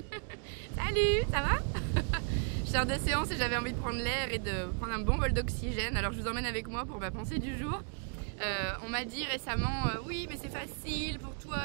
ça va? Je sors de séance et j'avais envie de prendre l'air et de prendre un bon bol d'oxygène. Alors je vous emmène avec moi pour ma pensée du jour. On m'a dit récemment, oui mais c'est facile pour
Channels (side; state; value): left; quieter; 39.7 dB